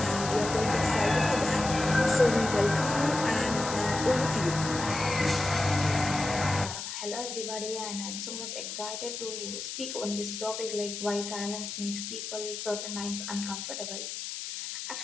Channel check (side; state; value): left; noise; hiss, 7 dB below the sound